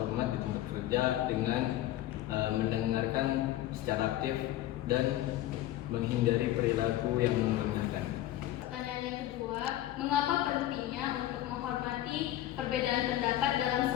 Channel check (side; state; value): right; quieter; 14.1 dB